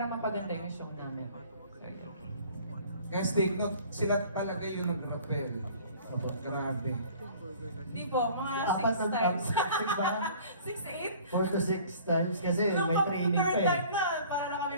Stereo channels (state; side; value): inverted; both; correlation -0.49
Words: mapaganda yung show namin. So, Guys, take note, sila talaga yung nag-rappel. Grabe. Hindi po, mga Apat 6 na times. 6 ba? 6, 8? 4 to 6 times kasi Nung may training pa third eh. time na, para na kami